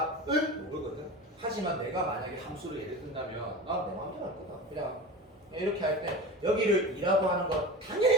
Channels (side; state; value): both; normal; correlation 0.31